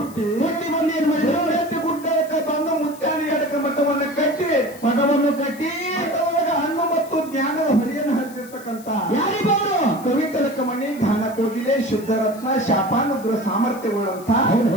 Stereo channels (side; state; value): left; noise; hiss, 20 dB below the sound